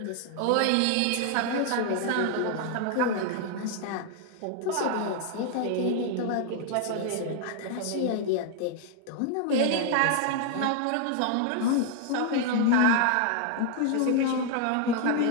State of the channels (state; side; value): different; both; correlation 0.00